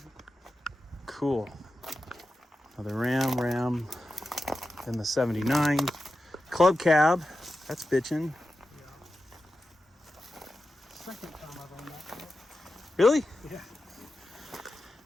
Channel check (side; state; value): both; normal; correlation 0.92